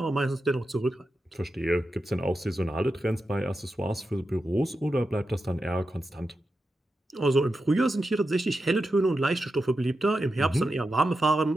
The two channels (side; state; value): both; normal; correlation 0.89